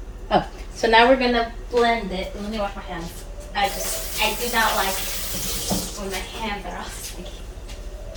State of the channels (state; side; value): identical; both; correlation 1.00